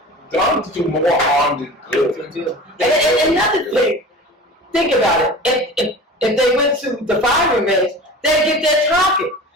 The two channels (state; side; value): normal; both; correlation 0.37